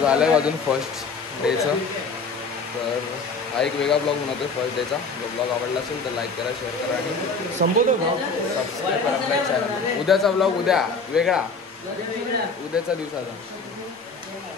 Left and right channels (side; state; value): right; quieter; 4.2 dB